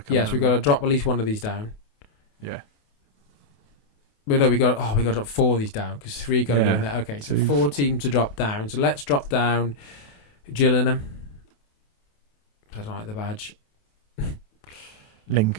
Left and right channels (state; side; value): late; right; 28 ms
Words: come. Yes, we've got to drop at least one of these down. Yeah. But no, we got to drop 4 of these down because 3 got to go in there. Okay, so 4 teams to drop down. So let's drop down Gillingham. I don't like the badge.